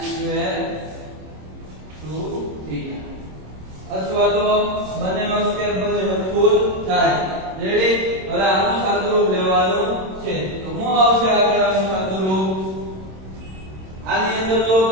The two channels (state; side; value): late; left; 26 ms